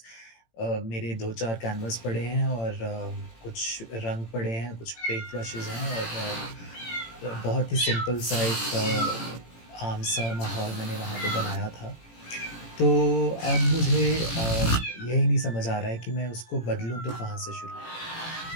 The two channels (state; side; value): late; right; 18 ms